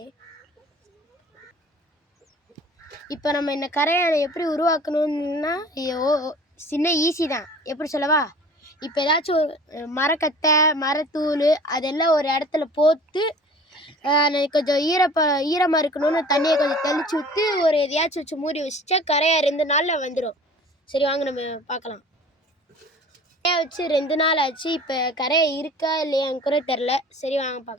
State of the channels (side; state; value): both; normal; correlation 0.45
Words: இப்போ நம்ம இந்த கரையை எப்படி உருவாக்கணும்னா சின்ன ஈஸி தான். எப்படி சொல்லவா? இப்போ ஏதாச்சும் ஒரு மரக்கட்டை மரத்தூள் அதெல்லாம் ஒரு இடத்துல போட்டு கொஞ்சம் ஈரமாக இருக்கணும்னு தண்ணியை கொஞ்சம் தெளிச்சு விட்டு ஒரு எதையாச்சும் வச்சு மூடி வச்சுட்டா கரையாக 2 நாளில் வந்துடும். சரி வாங்க நம்ம பார்க்கலாம். கரையை வச்சு 2 நாள் ஆச்சு. இப்போ கரையை இருக்கா இல்லையான்னு கூட தெரில. சரி வாங்க